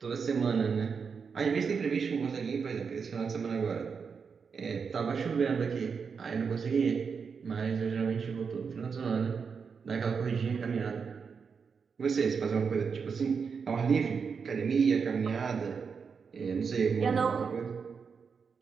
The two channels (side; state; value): left; quieter; 5.8 dB